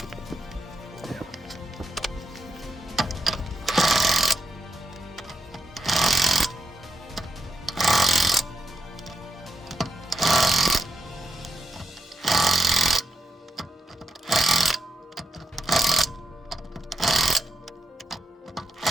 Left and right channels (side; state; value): both; normal; correlation 0.82